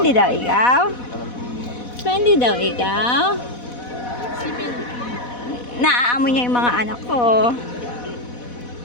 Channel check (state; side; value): late; right; 4.1 ms